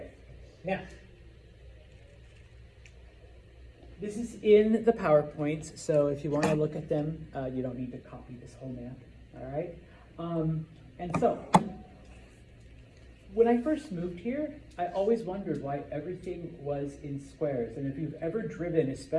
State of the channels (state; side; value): identical; both; correlation 1.00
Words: Now, this is in the PowerPoints, so if you want to look at them, you don't need to copy this whole map, all right? And so, when I first moved here, I always wondered why everything was in squares. And if you've ever driven,